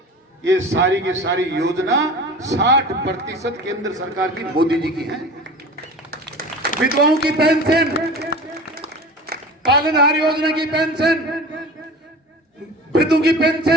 ये सारी की सारी योजना 60% केंद्र सरकार की मोदी जी की है। विधवाओं की पेंशन, पालनहार योजना की पेंशन, वृद्धों की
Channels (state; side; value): normal; both; correlation 0.36